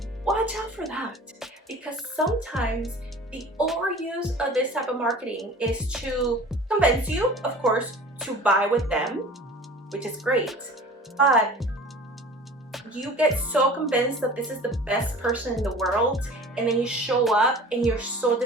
Watch out for that, because sometimes the overuse of this type of marketing is to convince you, of course, to buy with them, which is great, but you get so convinced that this is the best person in the world, and then you show up and you're so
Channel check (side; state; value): both; normal; correlation 0.43